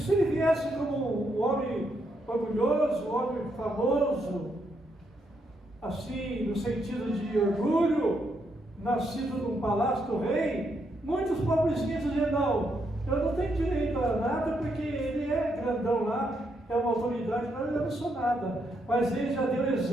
ele viesse como um homem orgulhoso, um homem famoso, assim, no sentido de orgulho, nascido num palácio do rei, muitos pobrezinhos diziam: não, eu não tenho direito a nada, porque ele é grandão lá, é uma autoridade, mas eu não sou nada. Mas ele já deu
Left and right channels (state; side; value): normal; both; correlation 0.78